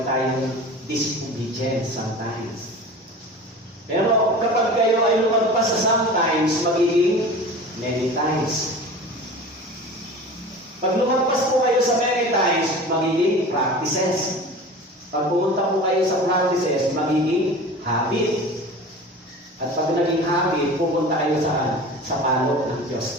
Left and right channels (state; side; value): normal; both; correlation 0.37